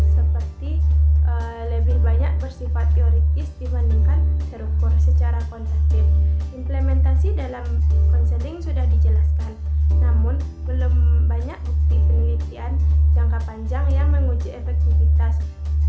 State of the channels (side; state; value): both; identical; correlation 1.00